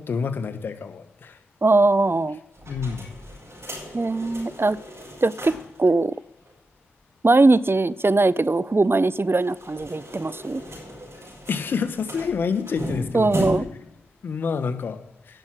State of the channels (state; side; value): normal; both; correlation 0.88